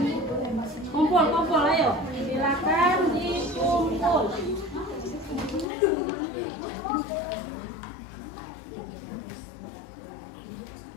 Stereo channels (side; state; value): right; drops out; at 5.7 s